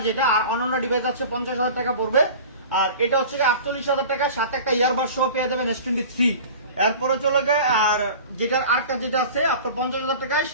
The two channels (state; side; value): inverted; both; correlation -0.39